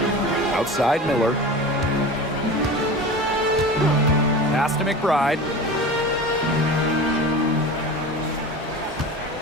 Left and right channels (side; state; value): both; normal; correlation 0.32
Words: Outside Miller. Pass to McBride.